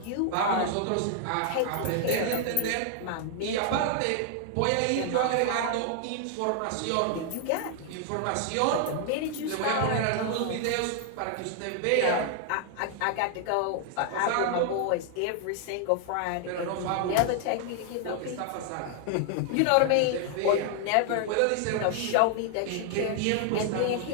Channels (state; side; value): different; both; correlation 0.00